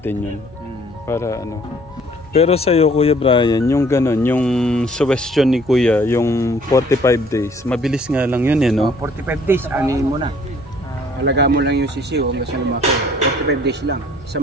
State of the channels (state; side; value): normal; both; correlation 0.58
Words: yun. Para ano. Pero sa'yo Kuya Brian, yung ganon, yung suggestion ni Kuya, yung 45 days, mabilis nga lang yun eh, no? 45 days, anin mo na. Alaga mo lang yung sisiw hanggang sa lumaki. 45 days lang.